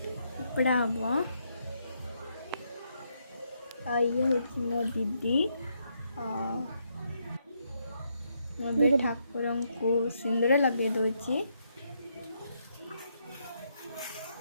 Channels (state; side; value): inverted; both; correlation -0.77